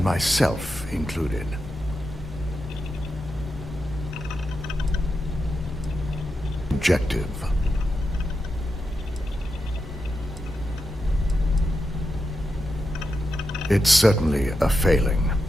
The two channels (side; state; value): both; normal; correlation 0.87